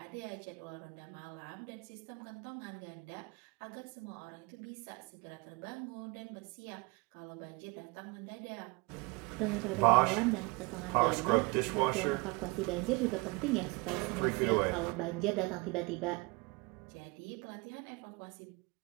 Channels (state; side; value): quieter; left; 27.4 dB